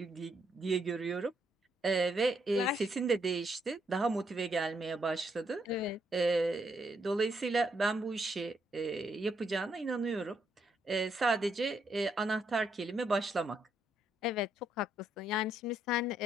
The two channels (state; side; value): normal; both; correlation 0.76